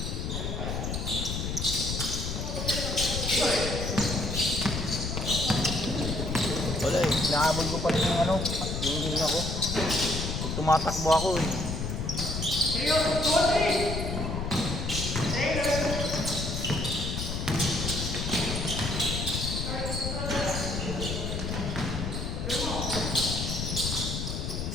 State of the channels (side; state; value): left; noise; rumble, 3 dB below the sound